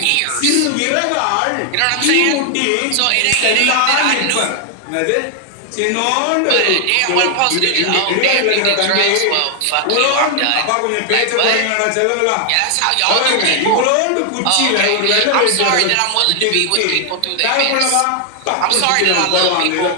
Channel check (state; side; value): different; both; correlation 0.00